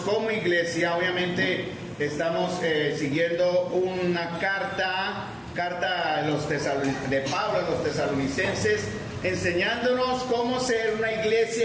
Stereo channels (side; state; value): both; identical; correlation 1.00